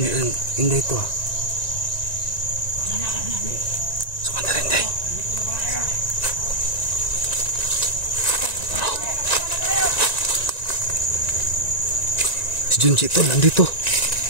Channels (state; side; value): late; right; 1.9 ms